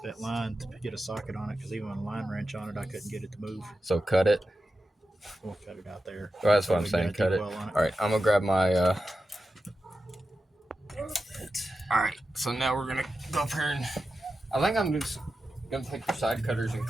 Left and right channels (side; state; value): both; normal; correlation 0.91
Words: that line to get a socket on it because even with a line wrench on it, I couldn't get it to move. So cut it. We'll cut it out there. Well, that's what I'm saying. Cut it. All right, I'm gonna grab my. All right, so now we're gonna go up here and I think I'm just gonna take the side cutters and